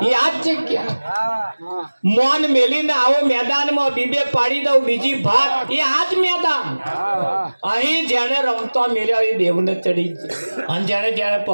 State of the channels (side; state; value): both; inverted; correlation -1.00